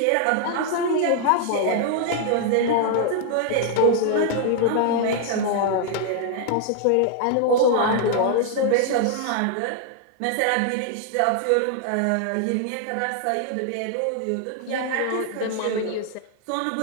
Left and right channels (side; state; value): both; different; correlation 0.00